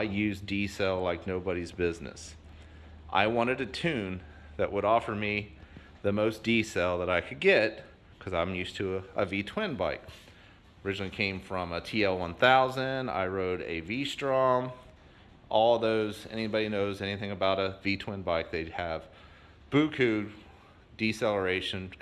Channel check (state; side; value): identical; both; correlation 1.00